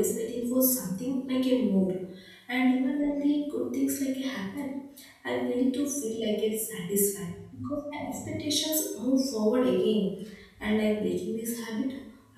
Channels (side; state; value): both; identical; correlation 1.00